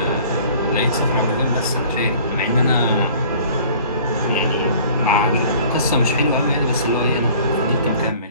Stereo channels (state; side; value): inverted; both; correlation -0.50